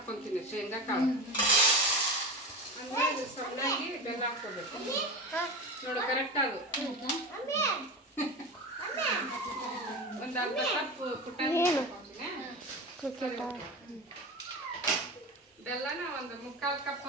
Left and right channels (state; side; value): normal; both; correlation 0.25